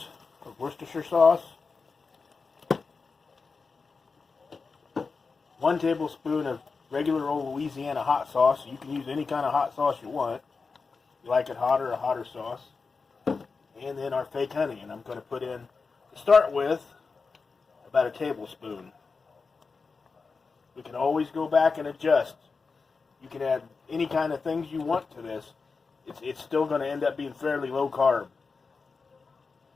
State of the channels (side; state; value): right; quieter; 4.6 dB